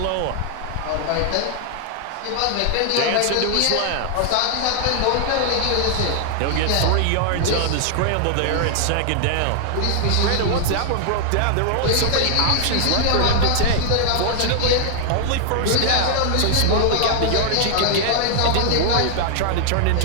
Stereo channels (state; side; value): different; both; correlation 0.00